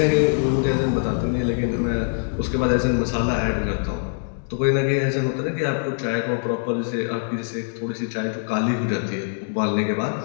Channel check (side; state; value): right; silent; digital silence